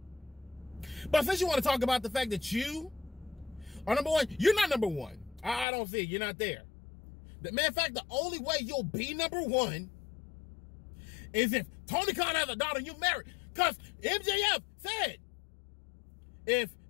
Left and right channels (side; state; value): right; drops out; at 5.7 s